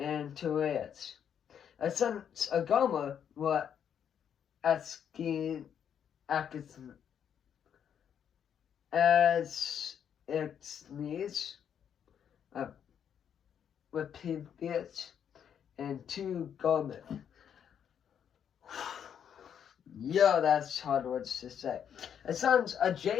Tereas. The sons of Gomer were Askin, Exnes, Repivius, and two Gomer. Yo, that's hard words to say. The sons of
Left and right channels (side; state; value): right; quieter; 8.5 dB